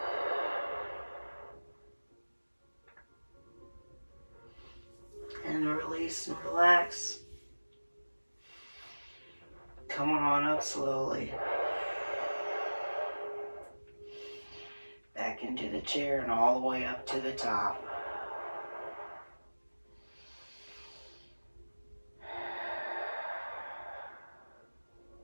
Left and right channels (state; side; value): inverted; both; correlation -1.00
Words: And release and relax. Coming on up slowly. Back into the chair and all the way up to the top.